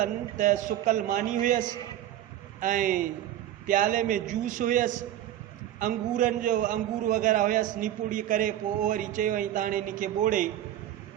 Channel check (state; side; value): quieter; left; 12.2 dB